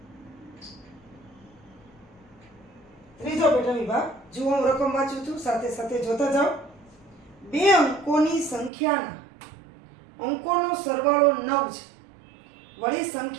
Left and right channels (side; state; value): left; drops out; at 8.7 s